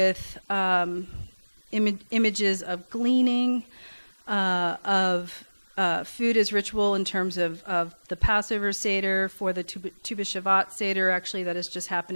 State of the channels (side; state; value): both; inverted; correlation -1.00